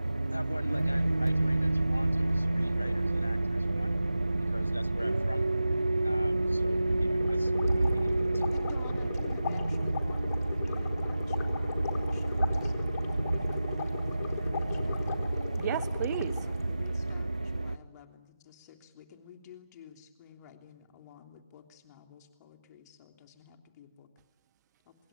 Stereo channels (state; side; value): inverted; both; correlation -0.93